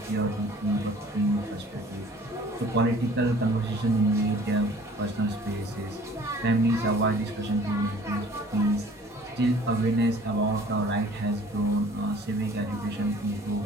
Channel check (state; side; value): normal; both; correlation 0.51